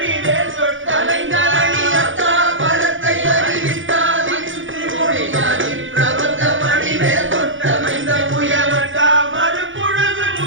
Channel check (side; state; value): left; late; 0.57 ms